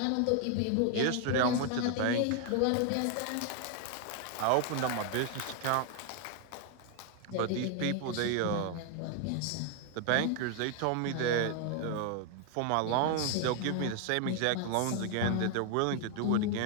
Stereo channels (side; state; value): both; different; correlation 0.00